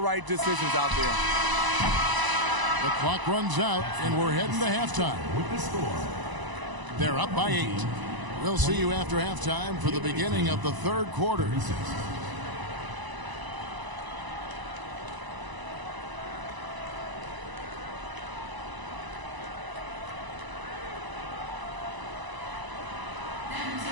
decisions out there. The clock runs out, and we're heading to halftime. They're up by 8. We'll see you after halftime for the beginning of the 3rd quarter.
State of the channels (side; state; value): left; late; 1.0 ms